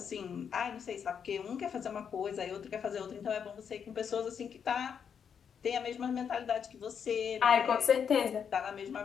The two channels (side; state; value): right; quieter; 7.3 dB